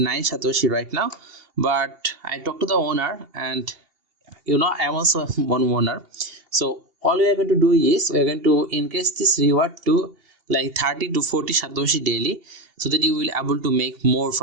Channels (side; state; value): left; late; 2.8 ms